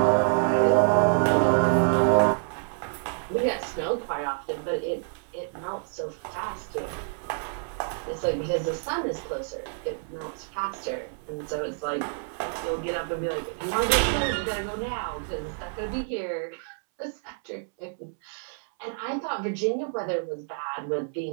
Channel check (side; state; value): left; silent; 60 dB below the other